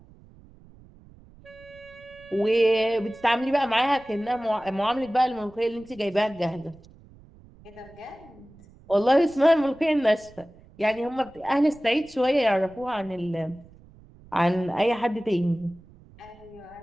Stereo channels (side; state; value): right; noise; rumble, 24 dB below the sound